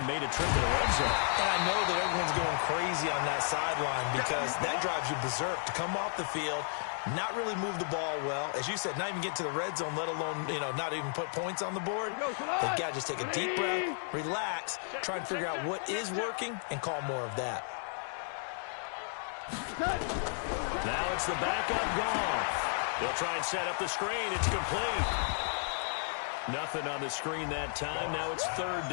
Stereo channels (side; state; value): right; silent; digital silence